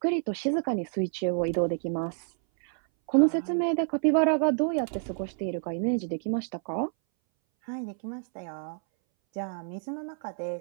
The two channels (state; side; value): silent; left; 59 dB below the other